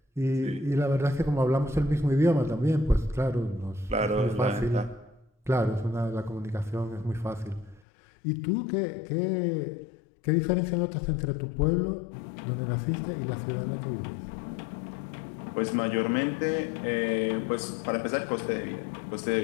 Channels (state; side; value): drops out; right; at 7.8 s